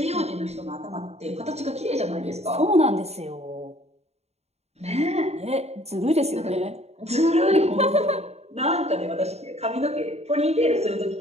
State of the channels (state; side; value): late; left; 0.31 ms